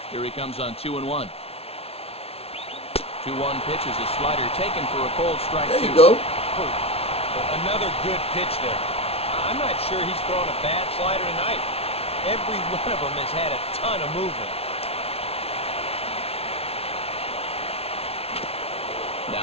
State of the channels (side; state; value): right; late; 0.29 ms